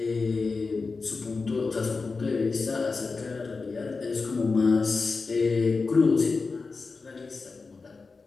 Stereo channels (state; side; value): quieter; right; 4.3 dB